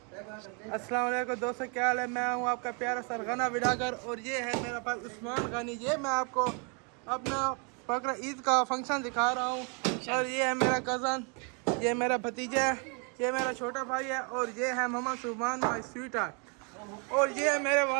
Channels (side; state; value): left; quieter; 36.1 dB